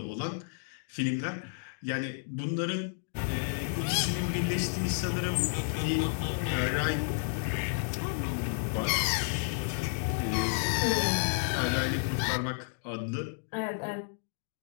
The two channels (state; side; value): silent; right; digital silence